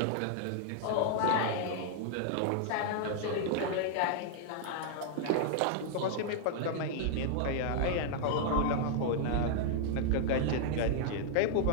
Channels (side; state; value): both; different; correlation -0.01